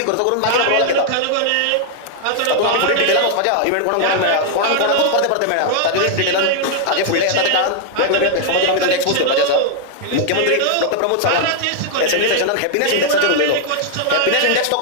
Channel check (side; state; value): both; different; correlation 0.00